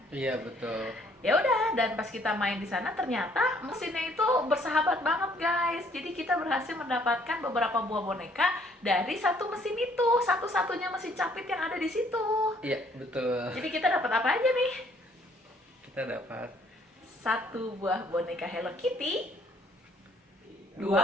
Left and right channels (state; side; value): normal; both; correlation 0.63